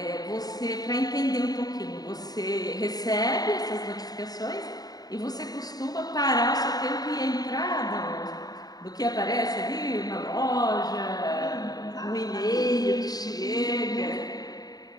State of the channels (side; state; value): right; late; 0.18 ms